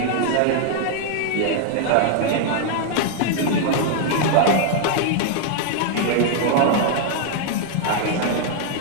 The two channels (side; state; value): both; different; correlation -0.01